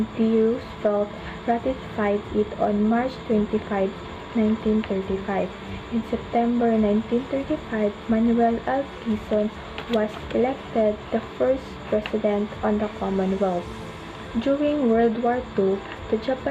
D. Roosevelt ratified it on March 25, 1935. In September 1935, Manuel L. Quezon was elected the first president on the Commonwealth. During World War II, the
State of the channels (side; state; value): both; identical; correlation 1.00